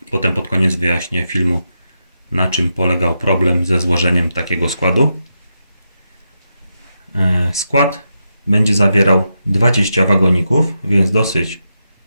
Potem pod koniec wyjaśnię filmu, na czym polegał problem ze złożeniem takiego składu. Skład będzie zawierał 20 wagoników, więc dosyć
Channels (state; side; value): inverted; both; correlation -0.86